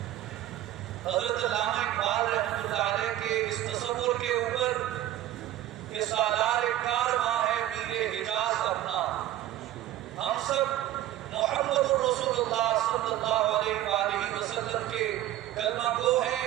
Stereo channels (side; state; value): left; quieter; 13.5 dB